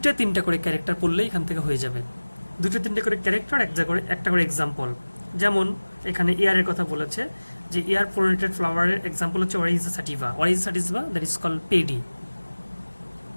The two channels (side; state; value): both; inverted; correlation -1.00